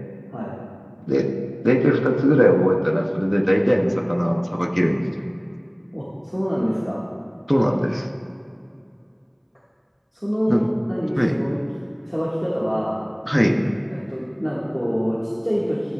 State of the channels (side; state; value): both; identical; correlation 1.00